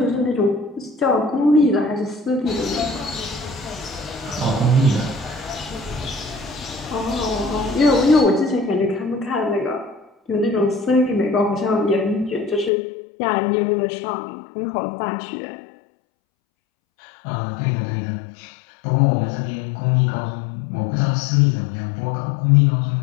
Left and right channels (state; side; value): drops out; right; at 12.7 s